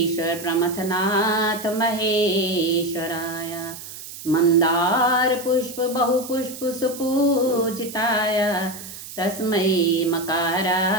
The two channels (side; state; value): right; noise; hiss, 13 dB below the sound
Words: प्रमथनाथ महेश्वराय मंदार पुष्प बहुपुष्प सुपूजिताय तस्मै